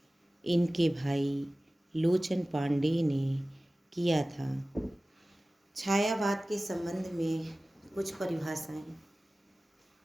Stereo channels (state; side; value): normal; both; correlation 0.97